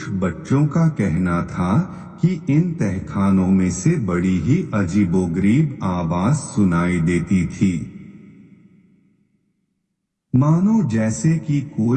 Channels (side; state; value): both; identical; correlation 1.00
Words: बच्चों का कहना था कि इन तहखानों में से बड़ी ही अजीबोगरीब आवाज सुनाई देती थी, मानो जैसे कि